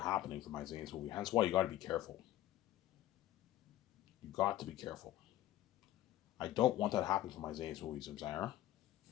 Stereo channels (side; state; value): right; quieter; 14.2 dB